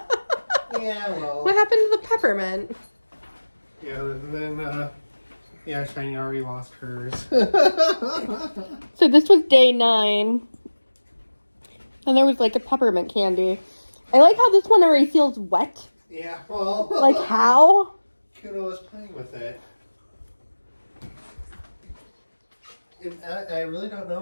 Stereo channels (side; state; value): both; inverted; correlation -1.00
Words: Yeah, well. What happened to the peppermint? Yeah, and then, yeah, Shiny already lost hers. So this was day 9. And there was like a peppermint candy. I like how this one already feels wet. Yeah, well. Like how? Kuno was playing with it. I really don't